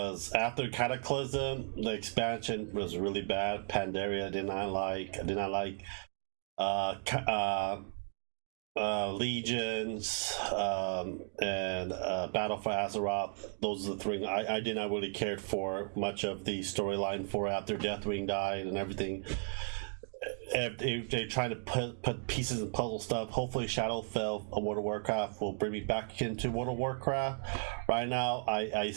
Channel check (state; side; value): silent; left; 54 dB below the other